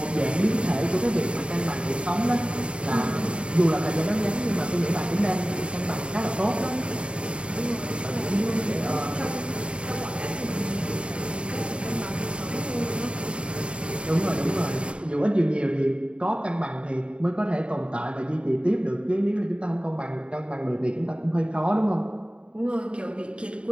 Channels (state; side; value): late; left; 0.056 ms